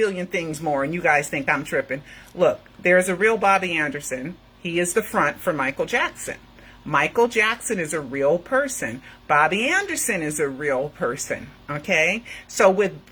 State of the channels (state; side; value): identical; both; correlation 1.00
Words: things more, and you guys think I'm tripping. Look, there's a real Bobby Anderson. He is the front for Michael Jackson. Michael Jackson is a real person. Bobby Anderson is a real person. Okay? So